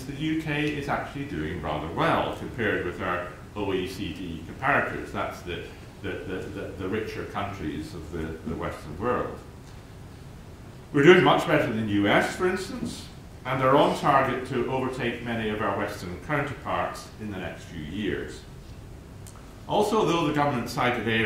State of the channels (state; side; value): identical; both; correlation 1.00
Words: the UK is actually doing rather well compared with our OECD comparators. That's the richer countries of the Western world. We're doing much better than the US, for instance, and are on target to overtake many of our Western counterparts in the next few years. Also, though the government cited